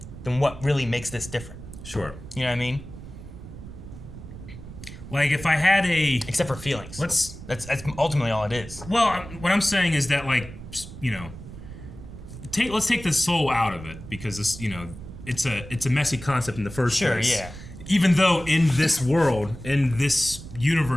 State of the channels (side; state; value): right; noise; rumble, 14 dB below the sound